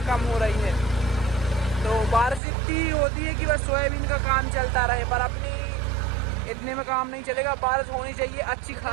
कम हो रही है। तो बारिश इतनी होती है कि बस सोयाबीन का काम चलता रहे, पर अपनी इतने में काम नहीं चलेगा। बारिश होनी चाहिए अच्छी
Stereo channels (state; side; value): drops out; left; at 2.4 s